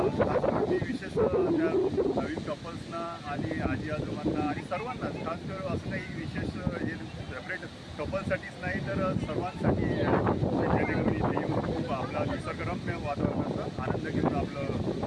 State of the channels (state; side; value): identical; both; correlation 1.00